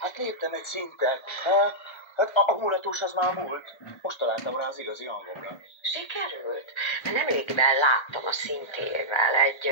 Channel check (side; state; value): right; late; 1.3 ms